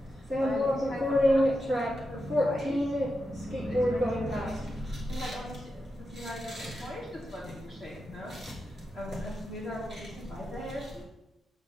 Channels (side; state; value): both; normal; correlation 0.88